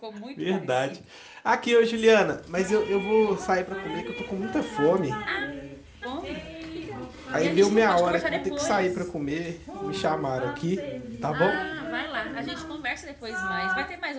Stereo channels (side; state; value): both; identical; correlation 1.00